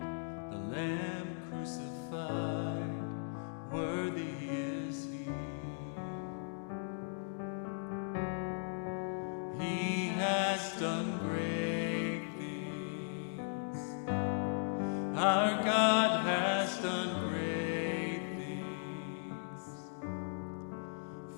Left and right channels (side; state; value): right; silent; digital silence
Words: the Lamb crucified, worthy is He. He has done great things. Our God has done great things.